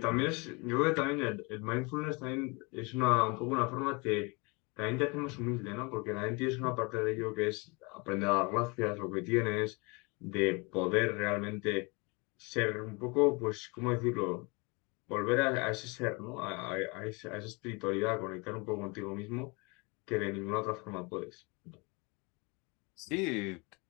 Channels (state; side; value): quieter; right; 29.0 dB